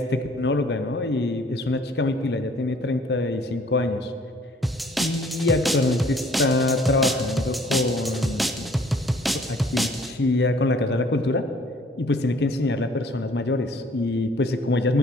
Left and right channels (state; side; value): normal; both; correlation 0.57